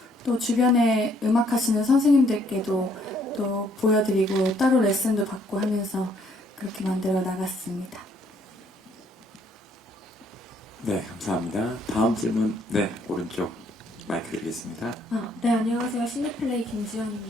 또 주변에 음악하시는 선생님들께도 또 보여드리고 따로 레슨도 받고 하면서 그렇게 만들어 나갔습니다. 네, 감사합니다. 다음 질문, 네, 오른쪽 마이크 드리겠습니다. 네, 안녕하세요. 시네플레이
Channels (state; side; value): normal; both; correlation 0.66